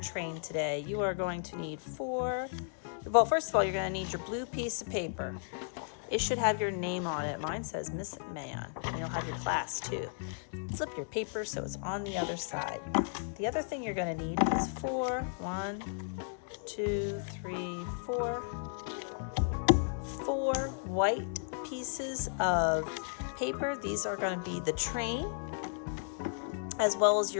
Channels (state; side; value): silent; right; digital silence